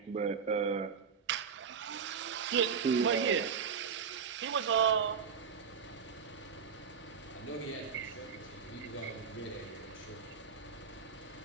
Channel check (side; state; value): left; quieter; 6.4 dB